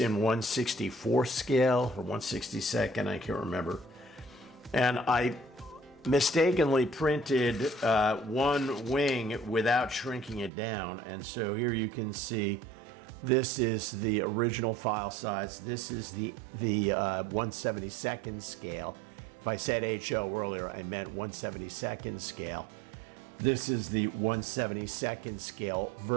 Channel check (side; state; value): left; drops out; at 10.5 s